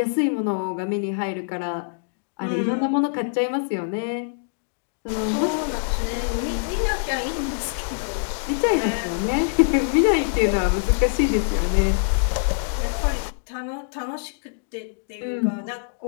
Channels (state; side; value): silent; right; digital silence